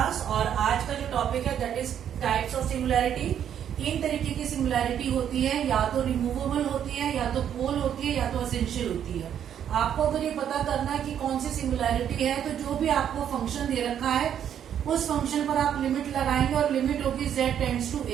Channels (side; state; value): left; quieter; 9.4 dB